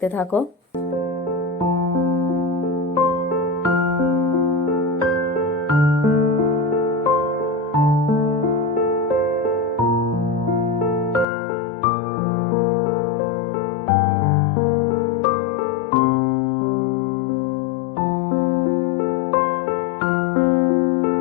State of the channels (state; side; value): drops out; right; at 11.2 s